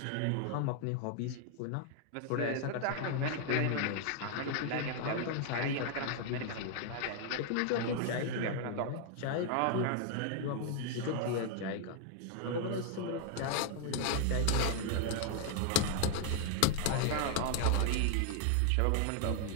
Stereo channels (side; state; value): both; different; correlation 0.00